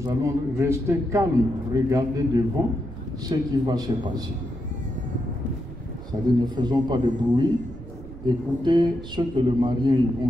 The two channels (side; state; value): right; noise; rumble, 15 dB below the sound